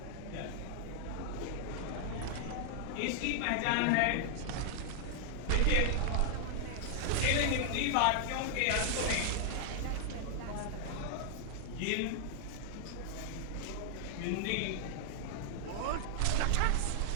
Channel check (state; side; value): different; both; correlation 0.00